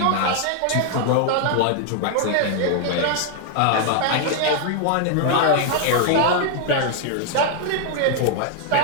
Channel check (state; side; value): different; both; correlation 0.00